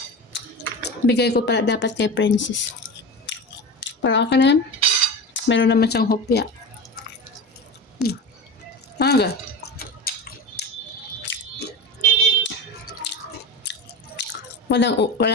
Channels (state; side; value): normal; both; correlation 0.27